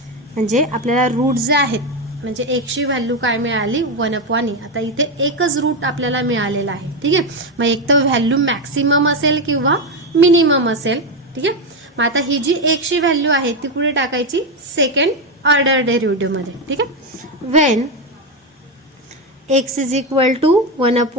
म्हणजे आपल्याला route जे आहेत, म्हणजे x ची value काय मिळाली, 1 अपॉन e. आता इथे एकच रूट आपल्याला मिळालेला आहे. ठीक आहे. मग एक तर व्हॅल्यू मॅक्सिमम असेल किंवा मिनिमम असेल. ठीक आहे. मग आता ही जी x ची व्हॅल्यू आहे ती कुठे टाकायची, सेकंड ऑर्डर डेरिव्हेटिव्ह मध्ये. ठीक आहे. When x is equal to 1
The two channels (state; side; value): normal; both; correlation 0.10